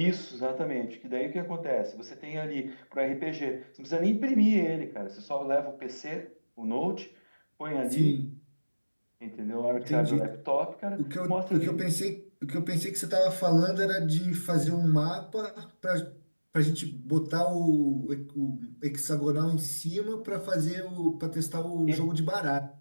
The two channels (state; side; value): inverted; both; correlation -1.00